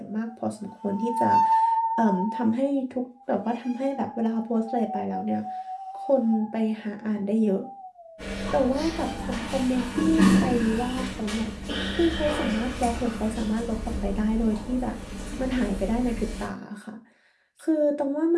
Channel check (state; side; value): identical; both; correlation 1.00